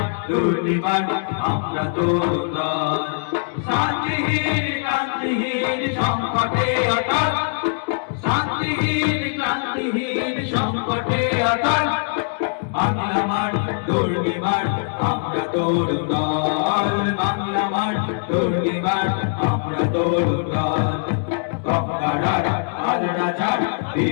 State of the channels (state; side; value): silent; right; digital silence